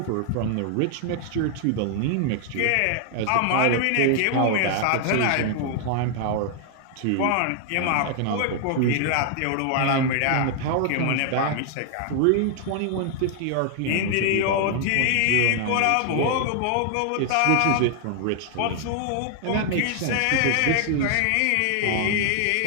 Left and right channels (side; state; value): both; different; correlation 0.00